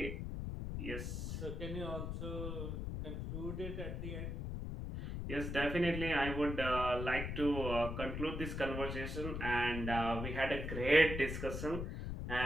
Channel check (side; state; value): left; noise; rumble, 4 dB below the sound